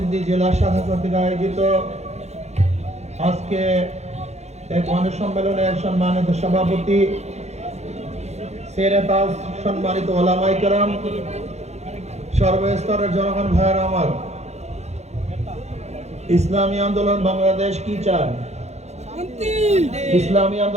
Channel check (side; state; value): left; late; 0.32 ms